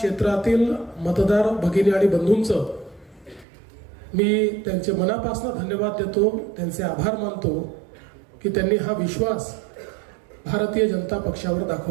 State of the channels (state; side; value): drops out; left; at 3.5 s